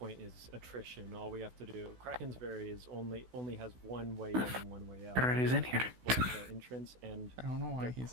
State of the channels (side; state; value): left; late; 16 ms